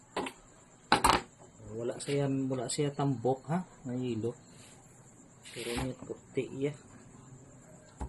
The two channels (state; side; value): identical; both; correlation 1.00